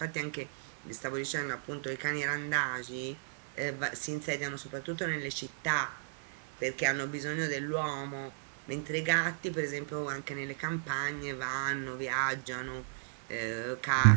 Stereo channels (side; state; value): left; silent; 55 dB below the other